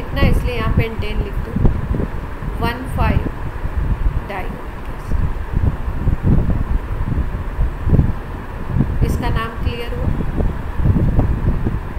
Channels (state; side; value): identical; both; correlation 1.00